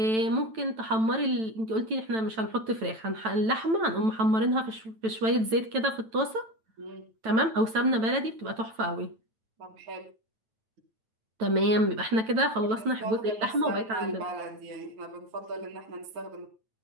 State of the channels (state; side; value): late; left; 9.0 ms